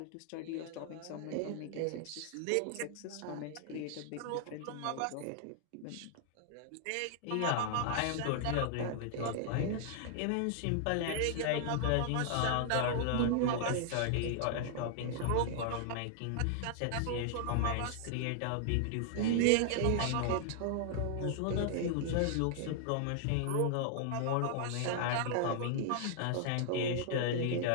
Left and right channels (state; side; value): different; both; correlation -0.01